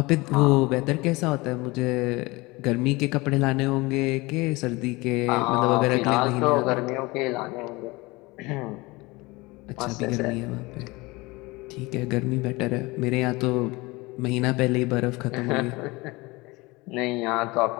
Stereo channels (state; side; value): quieter; right; 23.2 dB